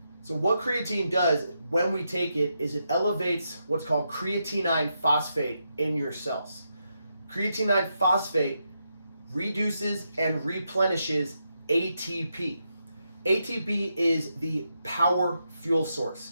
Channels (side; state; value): both; inverted; correlation -0.83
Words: So what creatine does when we take it is it elevates what's called creatine phosphate in your cells. Creatine phosphate reduces and replenishes ATP. ATP is the power fuel